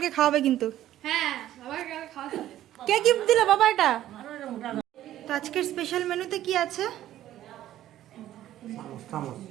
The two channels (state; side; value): quieter; left; 13.0 dB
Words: খাওয়াবে কিন্তু। হ্যাঁ বাবা কাল খাওয়া যাবে। কে গিফট দিল বাবা এটা? তো আজকের স্পেশাল মেনুতে কি আছে?